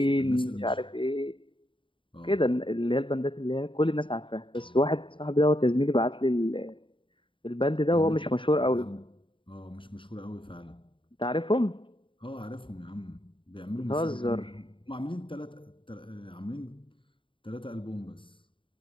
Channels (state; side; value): late; right; 0.25 ms